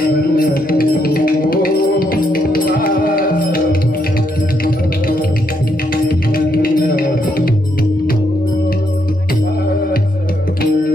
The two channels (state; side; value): normal; both; correlation 0.76